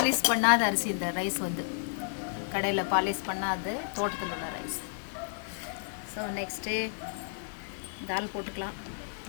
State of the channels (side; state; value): right; silent; 57 dB below the other